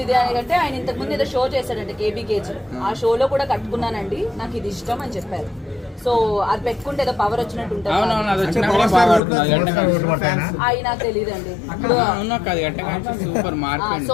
అని అంటే, ఆయన ఇంతకు ముందు ఏదో షో చేశాడంటే KBKG, ఆ షోలో కూడా కట్టుకున్నానండి, నాకు ఇది ఇష్టం అని చెప్పారు. సో అది పెట్టుకుంటే ఏదో పవర్ వచ్చినట్టు ఉంటుంది. అవి నాకు తెలియదండి.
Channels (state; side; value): drops out; right; at 9.2 s